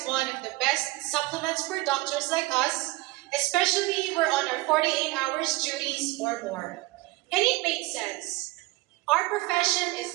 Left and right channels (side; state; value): left; quieter; 21.2 dB